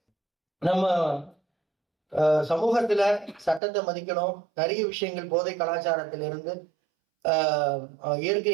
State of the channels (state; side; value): drops out; left; at 3.6 s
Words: நம்ம சமூகத்துல சட்டத்தை மதிக்கணும், நிறைய விஷயங்கள் போதை கலாச்சாரத்திலிருந்து